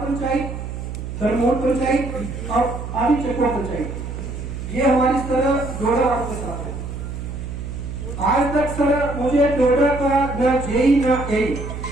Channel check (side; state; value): right; noise; hum, 7 dB below the sound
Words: दरमोड़ पंचायत और आदि चकवा पंचायत ये हमारी सर डोडा वालों के साथ है। आज तक सर मुझे डोडा का न जेई न ए